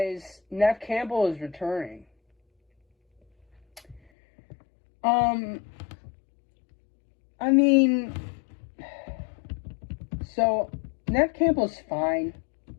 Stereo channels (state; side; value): drops out; right; at 4.0 s